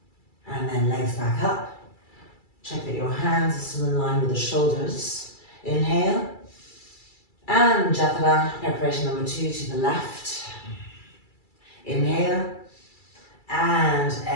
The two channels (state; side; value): late; right; 2.3 ms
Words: And then legs back up. Check that your hands are still in line with the shoulders. Inhale. And Jathara, preparation number 2 to the left. Inhale. And